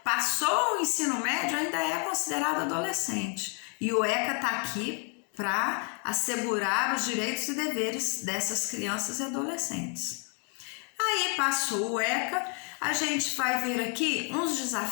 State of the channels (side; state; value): right; quieter; 37.5 dB